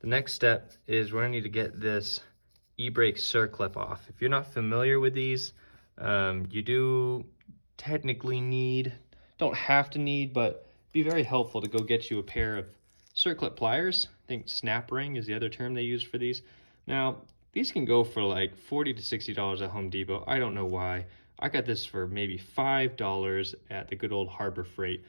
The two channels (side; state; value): both; inverted; correlation -1.00